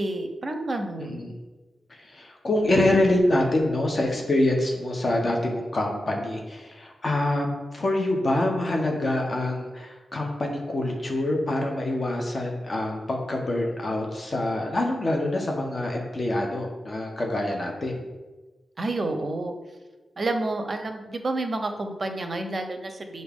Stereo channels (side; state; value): both; normal; correlation 0.89